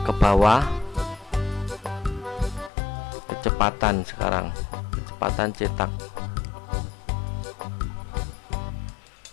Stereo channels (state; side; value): drops out; right; at 2.7 s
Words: ke bawah, kecepatan sekarang, kecepatan cetak.